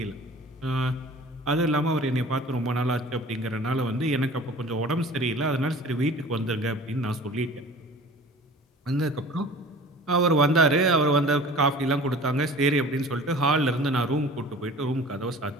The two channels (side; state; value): both; normal; correlation 0.44